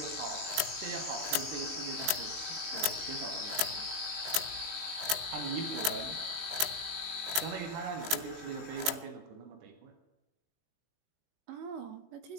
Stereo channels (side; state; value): left; late; 19 ms